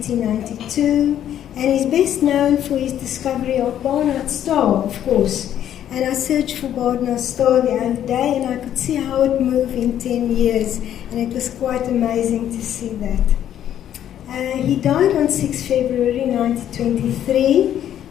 and he's best known for his discovery of Barnard's star, of course. And I searched for Barnard's star the other day, and I could see how it moved in 10 years, and it was quite amazing to see that. He died on 6 February 1923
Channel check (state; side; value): quieter; right; 10.7 dB